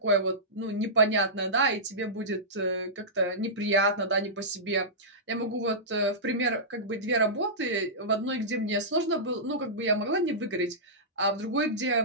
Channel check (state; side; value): normal; both; correlation -0.16